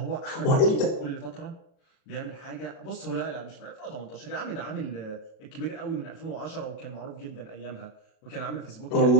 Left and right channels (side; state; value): right; late; 37 ms